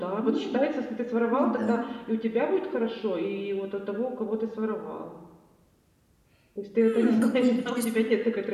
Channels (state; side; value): identical; both; correlation 1.00